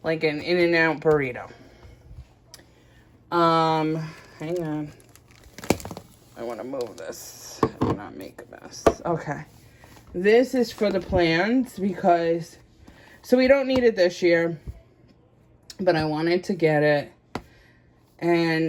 like an In-N-Out burrito. Hang on. I want to move this and not make a mess. Okay. This is for the plants because, so we don't need it this year, but I wanted to get it.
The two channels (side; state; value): both; identical; correlation 1.00